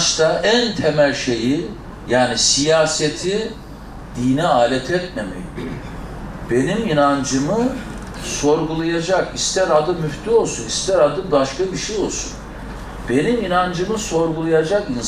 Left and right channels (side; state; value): both; identical; correlation 1.00